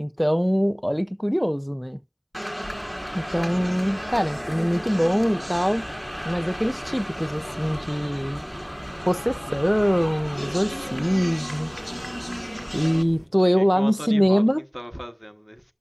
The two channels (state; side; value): identical; both; correlation 1.00